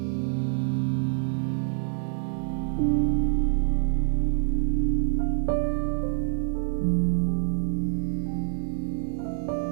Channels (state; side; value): silent; left; digital silence